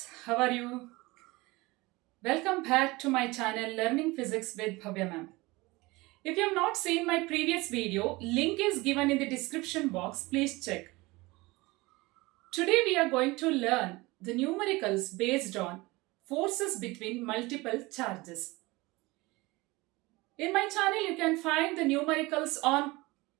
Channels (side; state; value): left; quieter; 22.3 dB